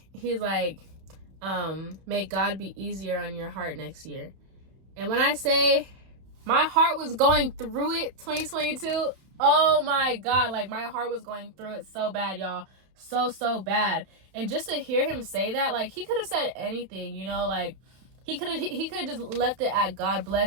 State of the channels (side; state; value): left; late; 31 ms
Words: may God be easier on your heart next year. And when I say my heart was going through it 2022, oh my God, like my heart was going through it so bad, y'all. So bad. And just to hear him say that, like he could have said anything, you know, like he could have just left it at God